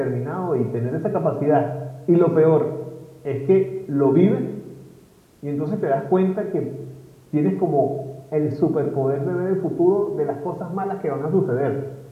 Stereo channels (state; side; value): identical; both; correlation 1.00